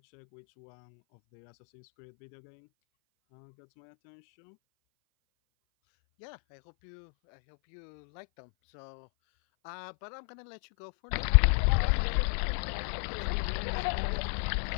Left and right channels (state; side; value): silent; right; 58 dB below the other